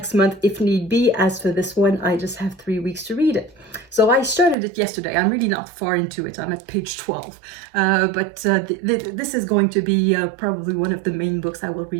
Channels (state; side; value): drops out; left; at 4.5 s